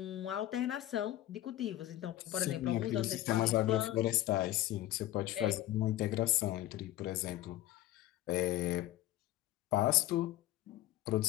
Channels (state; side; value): quieter; right; 14.7 dB